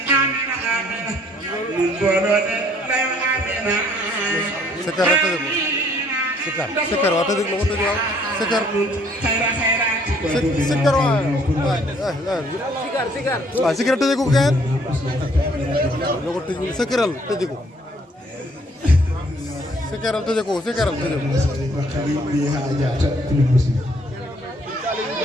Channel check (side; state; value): both; normal; correlation 0.62